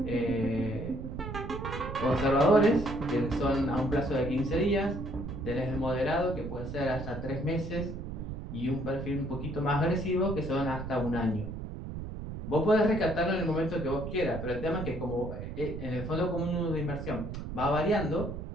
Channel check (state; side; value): noise; right; rumble, 7 dB below the sound